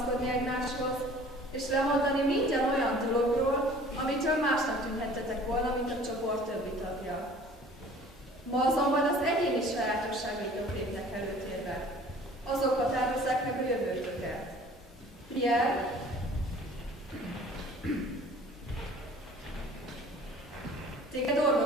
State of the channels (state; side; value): normal; both; correlation 0.49